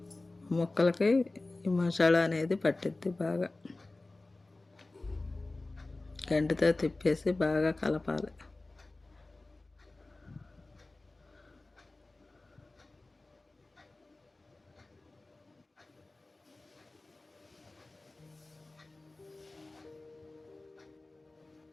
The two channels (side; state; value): right; quieter; 3.1 dB